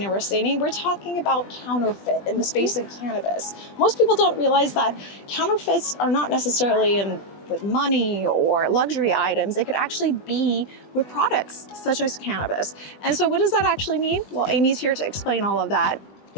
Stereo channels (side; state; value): right; late; 20 ms